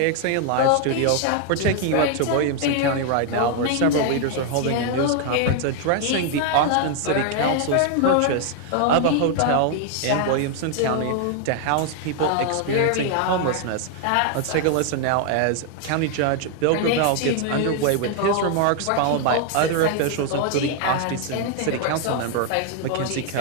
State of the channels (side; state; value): both; different; correlation 0.00